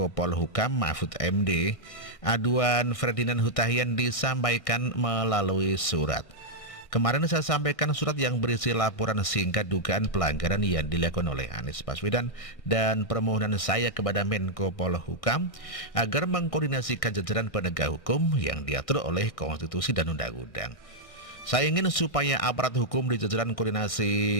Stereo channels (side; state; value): right; late; 1.6 ms